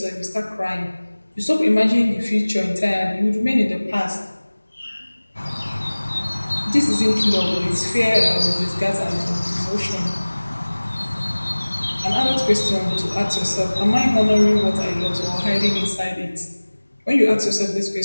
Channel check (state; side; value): inverted; both; correlation -1.00